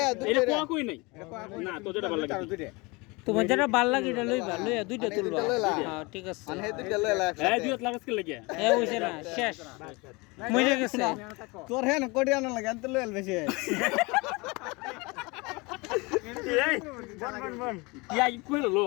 এটা কোয়া কই নাই না তো যেটা ভালো লাগে দুইটা তোমার যেটা ভাল লাগে এটা লইবা লইয়া দুইটা তুলবা লইলা। হ্যাঁ ঠিক আছে মানে হে দুইটা লইলা এই একসাথে দুটো লাগাস কে লাগে এ হইছে না শেষ মরে গেছে তোর হে না কোটি আনা লাগে তো লইল বেশি এই বন ইয়া কইলো লো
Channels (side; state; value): right; quieter; 26.1 dB